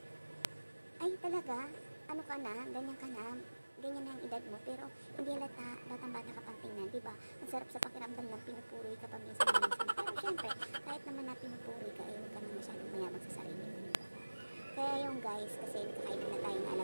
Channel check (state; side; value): inverted; both; correlation -1.00